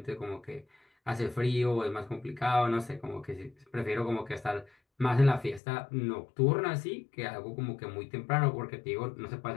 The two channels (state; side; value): drops out; right; at 5.6 s